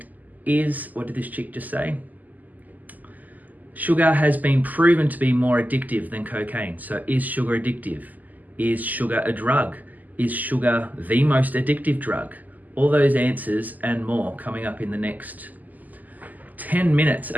is, what did this chick just say? Sugar has been proven to be more addictive than cocaine. So is sugar addictive? Is sugar a drug? Is sugar the most addictive drug? All those answers and more coming up in the next 10 minutes.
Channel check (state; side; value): late; left; 0.081 ms